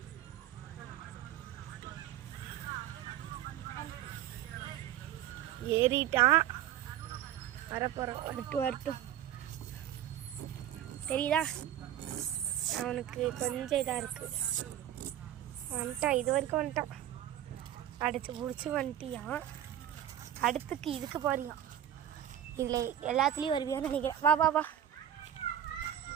ஏறிட்டான், வரப்போகிறான். வரட்டும் தெரியுதா? அவனுக்கு கொஞ்சம் இதாக இருக்குது. வந்துட்டான், இது வரைக்கும் வந்துட்டான். அடிச்சு பிடிச்சி வந்துட்டியான். அடுத்துக்கு இதுக்கு போறியான். இதில் எல்லாத்துலேயும் வருவியான்னு நினைக்கிறேன். வா வா வா.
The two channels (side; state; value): left; quieter; 11.2 dB